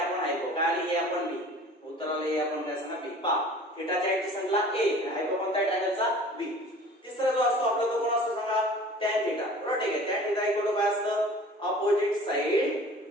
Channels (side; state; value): both; normal; correlation 0.45